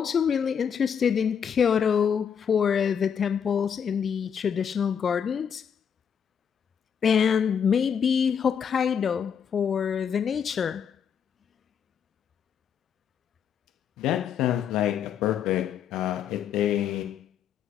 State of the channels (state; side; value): quieter; right; 7.6 dB